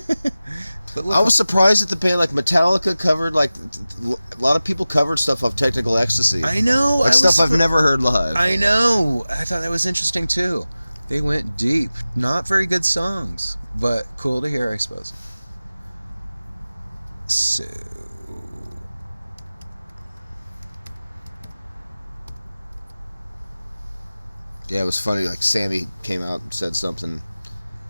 I was surprised that the band, like Metallica, covered, like, a lot of people covered stuff off Technical Ecstasy. I know. Like stuff I've never heard live. I know. I thought that was interesting, too. They went deep. Not very good songs, but cool to hear, I suppose. So... Yeah, it was funny. Like Sammy came out and said something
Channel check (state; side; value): inverted; both; correlation -0.96